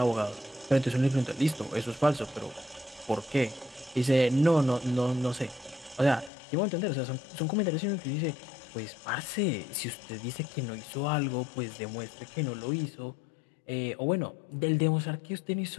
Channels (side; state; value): right; drops out; at 6.3 s